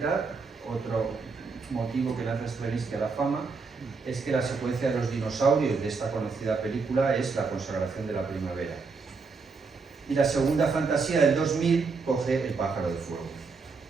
otro motivo que lanza Stravinsky a la fama es que la secuencia de los dinosaurios de esta conocida película es la consagración de la primavera. Y la segunda fantasía del 2000 coge El pájaro de fuego.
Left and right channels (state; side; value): quieter; left; 4.6 dB